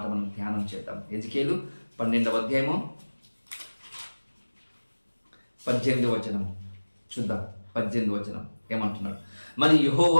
మనం ధ్యానం చేద్దాం. హెజ్కేలు 12వ అధ్యాయము 18వ వచనం చూద్దాం. 18వ వచనం ఏమంటున్నాడు? మరి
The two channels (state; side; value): inverted; both; correlation -1.00